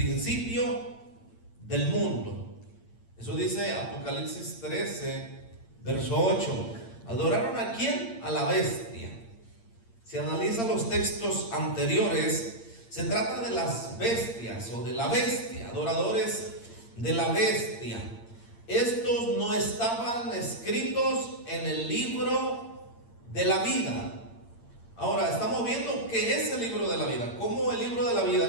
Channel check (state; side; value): late; right; 8.7 ms